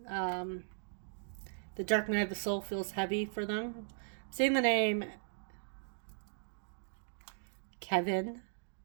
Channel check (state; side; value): silent; left; digital silence